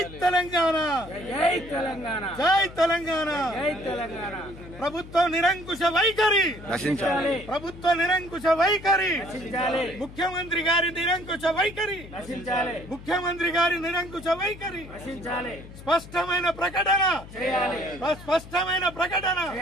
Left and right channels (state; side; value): noise; left; hum, 16 dB below the sound